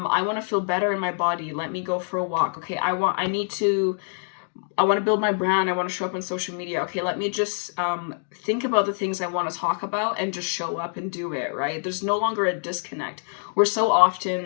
want to feel better in my body. Let me go for a walk. Okay, I want to build my brand. I want to show up on social media. Okay, let me just think about the things I want to talk about and just show up and do it, right? There's no longer a disconnect. We're so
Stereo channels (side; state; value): right; silent; digital silence